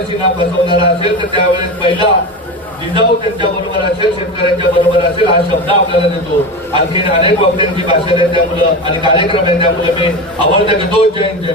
फसवणारा असेल तर त्यावेळेस पहिला जिजाऊ त्यांच्या बरोबर असेल, शेतकऱ्यांच्या बरोबर असेल, हा शब्द आपल्याला देतो. आणखी अनेक वक्त्यांची भाषण आहे त्यामुळं आणि कार्यक्रम आहे त्यामुळे मी आवडतं घेतो. जय हिंद, जय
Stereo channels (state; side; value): normal; both; correlation 0.23